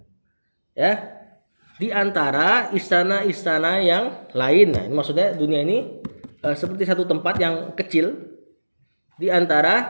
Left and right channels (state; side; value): inverted; both; correlation -1.00